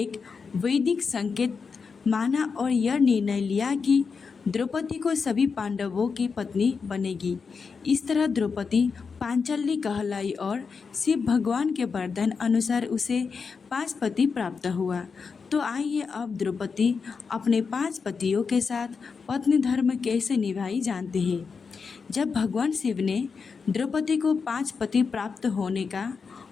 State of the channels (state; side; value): quieter; right; 5.3 dB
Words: वैदिक संकेत माना और यह निर्णय लिया कि द्रौपदी को सभी पांडवों की पत्नी बनेगी। इस तरह द्रौपदी पांचाली कहलाई और शिव भगवान के वरदान अनुसार उसे 5 पति प्राप्त हुआ। तो आइए अब द्रौपदी अपने 5 पतियों के साथ पत्नी धर्म कैसे निभाई जानते हैं। जब भगवान शिव ने द्रौपदी को 5 पति प्राप्त होने का